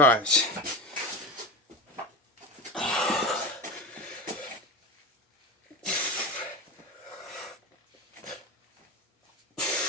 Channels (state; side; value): normal; both; correlation 0.25